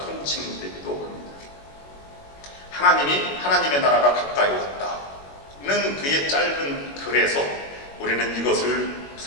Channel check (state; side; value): late; right; 21 ms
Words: 합니다. 하나님이, 하나님의 나라가 가까이 왔다는 그의 짧은 글에서 우리는 이것을